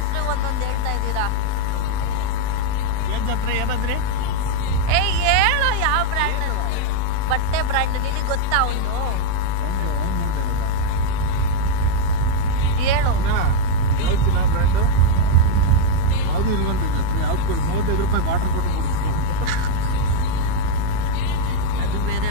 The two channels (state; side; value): different; both; correlation 0.00